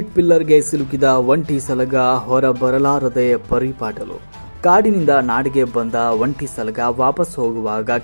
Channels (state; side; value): inverted; both; correlation -1.00